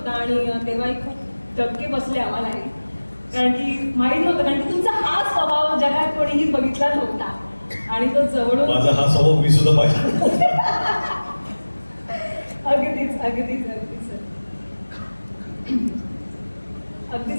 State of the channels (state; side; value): inverted; both; correlation -1.00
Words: आणि तेव्हाही खूप धक्के बसले आम्हालाही, कारण की माहिती नव्हतं, कारण की तुमचा हा स्वभाव जगात कोणीही बघितला नव्हता आणि तो जवळून माझा हा स्वभाव मी सुद्धा पाहिजे. अगदीच अगदीच अगदीच सर,